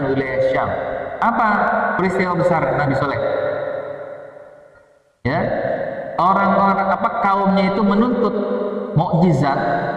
wilayah Syam. Apa peristiwa besar Nabi Saleh? Ya, orang-orang kaumnya itu menuntut mukjizat.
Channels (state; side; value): identical; both; correlation 1.00